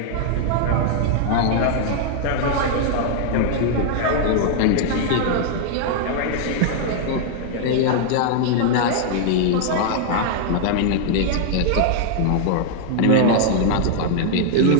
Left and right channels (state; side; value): different; both; correlation -0.01